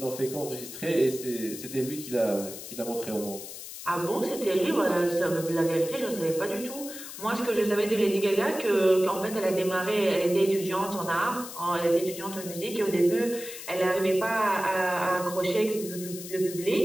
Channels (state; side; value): noise; left; hiss, 11 dB below the sound